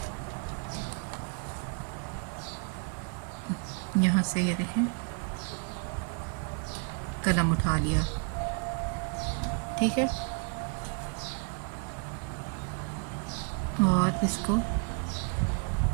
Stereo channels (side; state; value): left; quieter; 38.7 dB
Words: यहाँ से ये देखें, कलम उठा लिया, ठीक है, और इसको